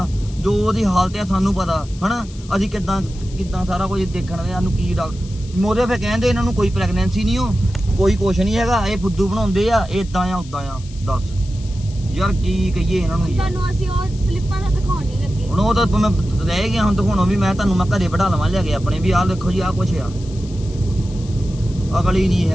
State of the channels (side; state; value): left; noise; hiss, 21 dB below the sound